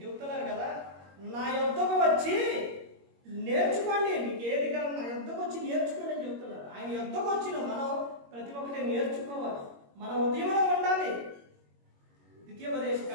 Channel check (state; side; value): late; left; 21 ms